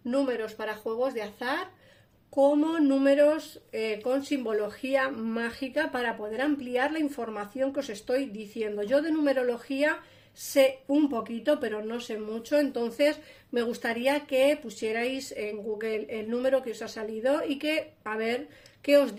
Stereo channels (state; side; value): identical; both; correlation 1.00